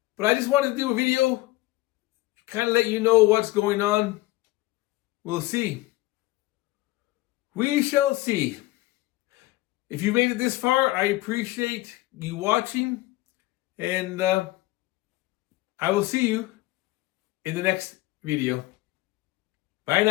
But I just wanted to do a video, kind of let you know what's going on. We'll see. We shall see. If you made it this far, I appreciate you watching. And I will see you in the next video. Bye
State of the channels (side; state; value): right; quieter; 18.9 dB